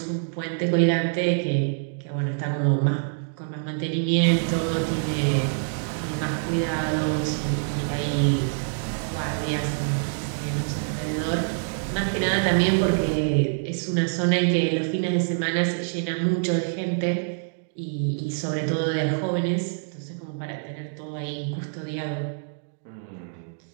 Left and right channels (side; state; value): left; silent; digital silence